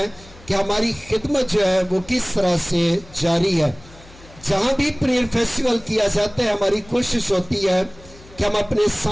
कि हमारी खिदमत जो है वो किस तरह से जारी है। जहाँ भी प्रेयर फेस्टिवल किया जाता है हमारी कोशिश होती है कि हम अपने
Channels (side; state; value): left; noise; hum, 22 dB below the sound